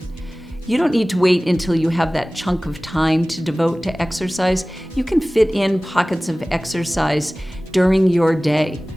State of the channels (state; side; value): normal; both; correlation 0.98